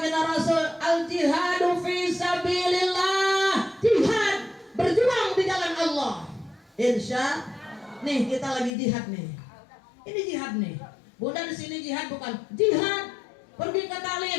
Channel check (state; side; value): drops out; right; at 8.7 s